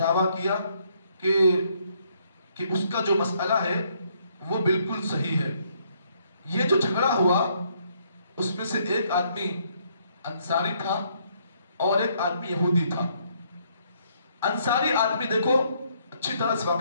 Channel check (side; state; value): both; inverted; correlation -0.70